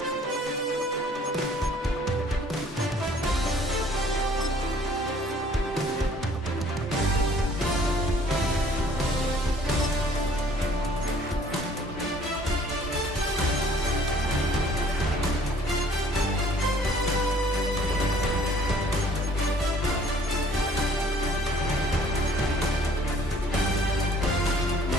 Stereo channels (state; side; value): normal; both; correlation 0.56